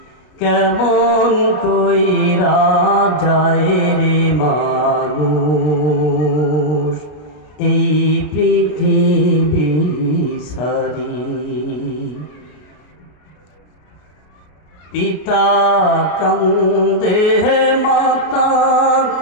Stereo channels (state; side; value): late; right; 33 ms